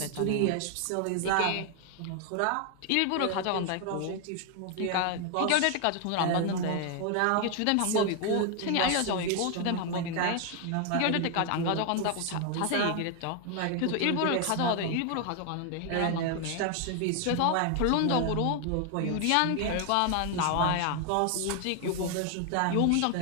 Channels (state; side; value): different; both; correlation 0.00